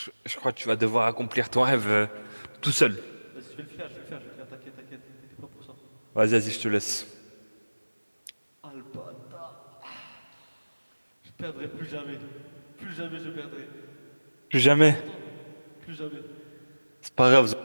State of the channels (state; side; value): inverted; both; correlation -1.00